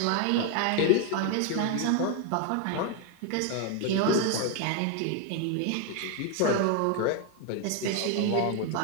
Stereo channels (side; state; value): both; different; correlation 0.01